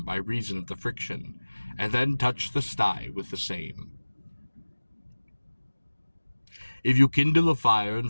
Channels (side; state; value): both; inverted; correlation -1.00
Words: by reason of the friction, and then touch the sty with the same. If you kindle a fire in